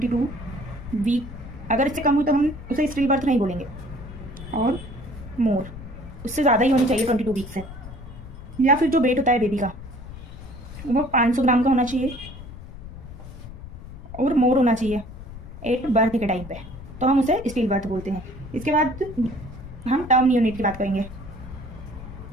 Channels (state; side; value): noise; left; rumble, 13 dB below the sound